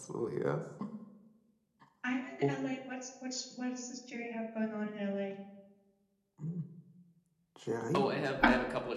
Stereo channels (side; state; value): both; identical; correlation 1.00